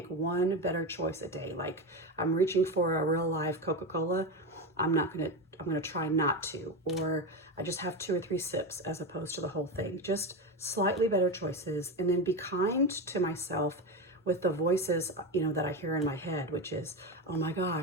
one better choice a day, like I'm reaching for a real live Coca-Cola, I'm going to try not to, or I just have 2 or 3 sips as opposed to the whole thing. Just slightly better choices, and then be kind to myself with the voices, that I hear in my head, which is, oh my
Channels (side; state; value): both; normal; correlation 0.16